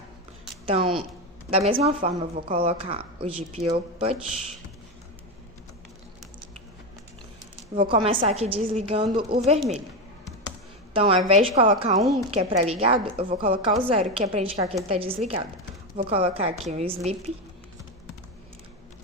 Então, da mesma forma, eu vou colocar o GPIOPut. Vou começar aqui desligando o vermelho. Então, ao invés de colocar 1, que é para ligado, eu vou colocar o 0, que é para indicar que ele está desligado. Vou colocar aqui um sleep,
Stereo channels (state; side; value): normal; both; correlation 0.14